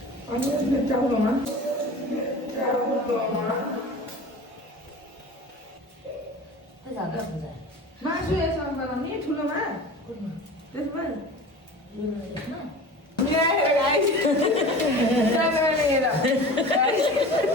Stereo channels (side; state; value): both; normal; correlation 0.37